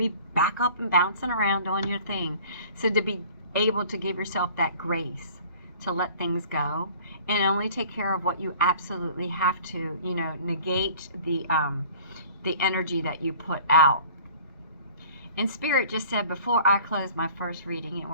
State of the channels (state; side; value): inverted; both; correlation -0.48